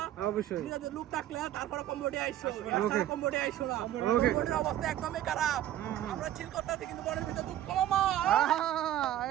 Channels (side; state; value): left; quieter; 12.6 dB